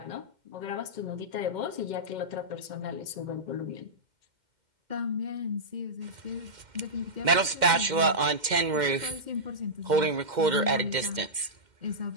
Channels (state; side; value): late; left; 2.1 ms